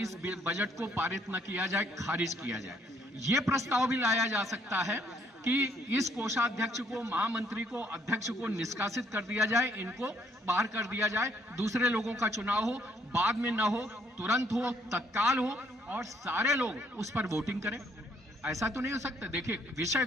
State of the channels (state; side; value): normal; both; correlation 0.68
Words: इस बजट को पारित न किया जाए, खारिज किया जाए। ये प्रस्ताव भी लाया जा सकता है कि इस कोषाध्यक्ष को, महामंत्री को, अध्यक्ष को निष्कासित कर दिया जाए, इनको बाहर कर दिया जाए, दूसरे लोगों का चुनाव हो, बाद में न हो, तुरंत हो, तत्काल हो और सारे लोग उस पर वोटिंग करें। ऐसा तो नहीं हो सकता। देखिए विषय